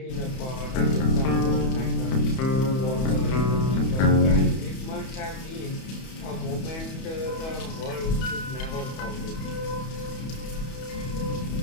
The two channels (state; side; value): late; right; 31 ms